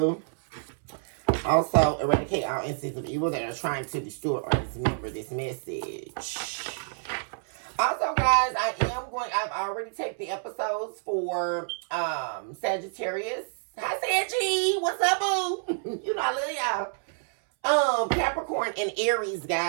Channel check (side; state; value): left; silent; 59 dB below the other